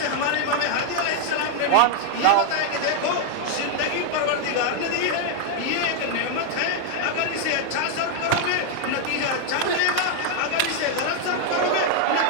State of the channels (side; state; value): both; different; correlation 0.00